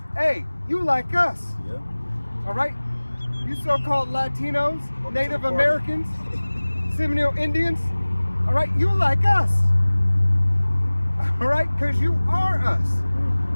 hey, you like us. Yeah. All right? You so-called Latinos, Native Americans, Seminole Indians, all right? You like us. All right? Because you are us.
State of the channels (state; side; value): inverted; both; correlation -1.00